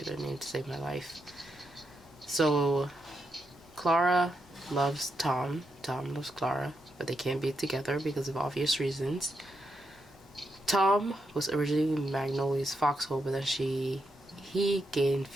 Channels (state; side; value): normal; both; correlation 0.83